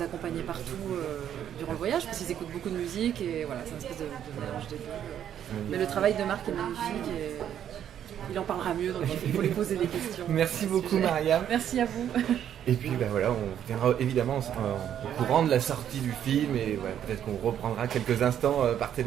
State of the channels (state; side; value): quieter; left; 9.9 dB